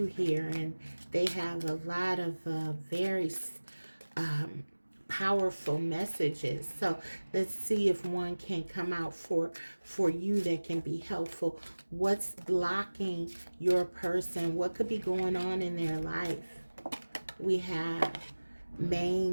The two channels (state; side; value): inverted; both; correlation -1.00